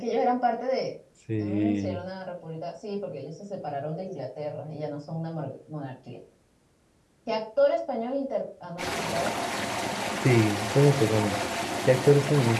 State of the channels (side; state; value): both; identical; correlation 1.00